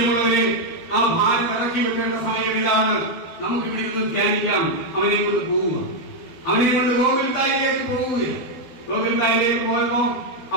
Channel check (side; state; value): right; late; 12 ms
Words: ആ ഭാരം ഇറക്കി വെക്കേണ്ട സമയങ്ങളിലാണ് നമുക്ക് ഇവിടെ നിന്ന് ധ്യാനിക്കാം. അവനെ കൊണ്ട് പോവുക. അവനെ കൊണ്ട് ഗോകുൽത്തായിലേക്ക് പോവുകയാണ്. ഗോകുൽത്തായിലേക്ക് പോയപ്പോ